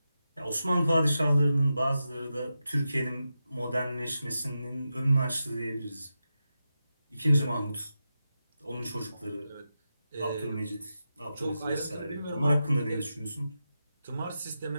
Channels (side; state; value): both; inverted; correlation -0.90